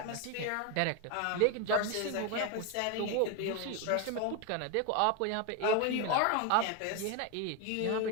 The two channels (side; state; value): both; different; correlation 0.02